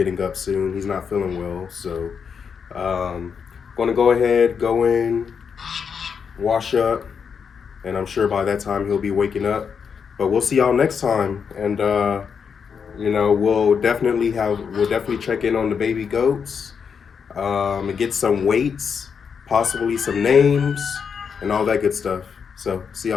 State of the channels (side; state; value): right; quieter; 6.5 dB